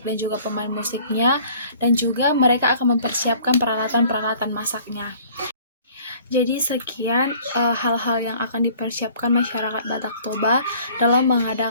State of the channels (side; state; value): both; inverted; correlation -0.53